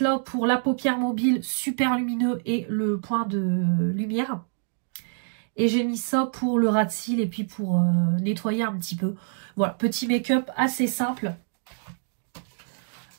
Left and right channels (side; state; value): left; silent; digital silence